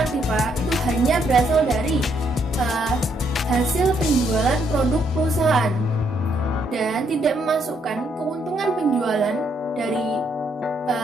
aktiva itu hanya berasal dari hasil penjualan produk perusahaan dan tidak memasukkan keuntungan penjualan dari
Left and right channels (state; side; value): normal; both; correlation 0.73